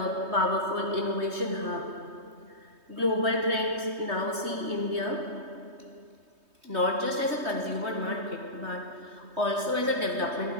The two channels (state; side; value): late; left; 3.2 ms